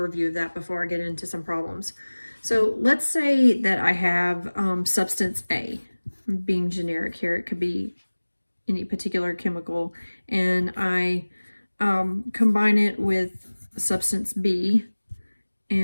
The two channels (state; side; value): inverted; both; correlation -1.00